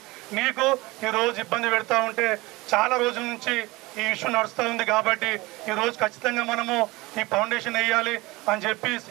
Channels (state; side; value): quieter; left; 21.8 dB